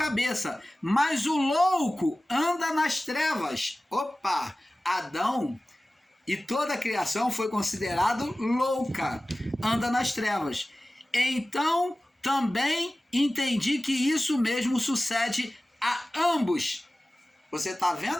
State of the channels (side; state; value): both; normal; correlation 0.97